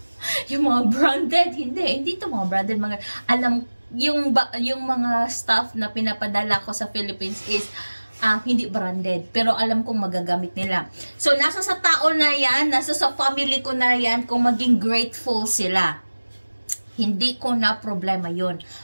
Yung mga branded, hindi to mga branded, mga, alam, yung mga stuff na pinapadala ko sa Philippines is, hindi branded. Pero alam kong magagamit nila. So, nasa sa tao na yan, nasa sa family ko na yan, kung maging grateful sila. Hindi ko na problema yun.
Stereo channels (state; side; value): inverted; both; correlation -1.00